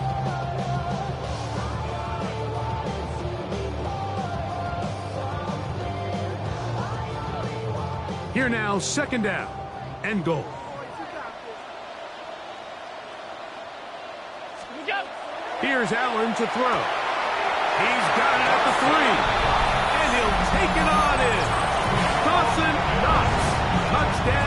Here now, 2nd down and goal. Here's Allen to throw. He's got it at the 3. And he'll take it on in. Dawson Knox.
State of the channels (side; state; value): both; identical; correlation 1.00